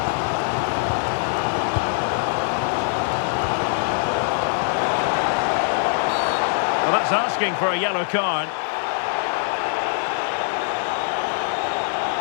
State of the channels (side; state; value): right; silent; digital silence